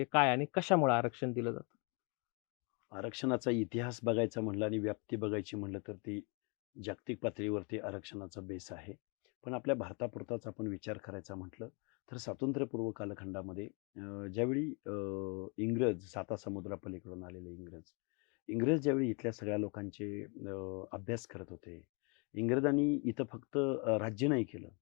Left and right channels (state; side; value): quieter; right; 33.5 dB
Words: काय आणि कशामुळे आरक्षण दिलं जातं? आरक्षणाचा इतिहास बघायचा म्हणलं आणि व्याप्ती बघायची म्हणलं तर ती जागतिक पातळीवरती आरक्षणाचा बेस आहे. पण आपल्या भारतापुरताच आपण विचार करायचा म्हटलं तर स्वातंत्र्यपूर्व कालखंडामध्ये ज्यावेळी इंग्रज सातासमुद्रापलीकडून आलेले इंग्रज ज्यावेळी इथल्या सगळ्या लोकांचे अभ्यास करत होते. इंग्रजांनी इथं फक्त राज्य नाही केलं.